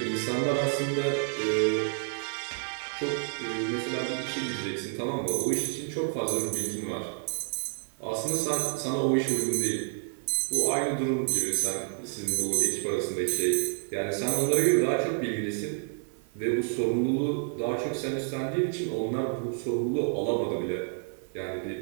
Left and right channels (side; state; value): left; silent; 58 dB below the other